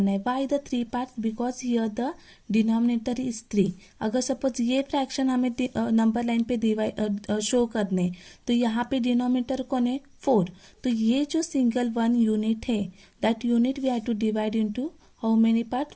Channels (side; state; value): both; identical; correlation 1.00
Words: है. Why the 3 parts, because here the denominator is 3. अगर सपोज ये फ्रैक्शन हमें नंबर लाइन पे डिवाइड शो करने, तो यहाँ पे डिनोमिनेटर कौन है, 4. तो ये जो सिंगल वन यूनिट है, that unit we have to divide into how many part,